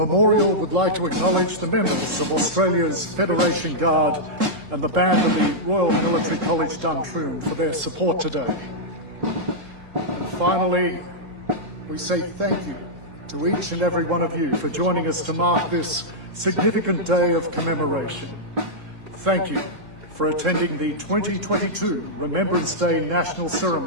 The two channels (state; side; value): late; left; 3.7 ms